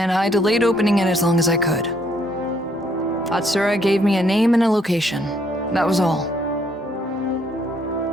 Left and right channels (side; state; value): both; normal; correlation 0.68